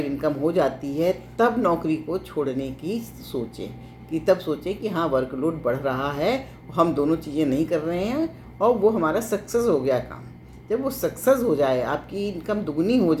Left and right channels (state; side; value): identical; both; correlation 1.00